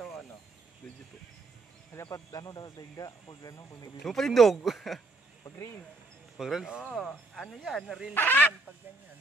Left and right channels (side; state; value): left; quieter; 3.1 dB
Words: o ano? Video po. Dapat ano daw daigda pag ano kung Yung palindog. pag reel. Pag reels? Oo, ano yan? Reels yan pag ganyan.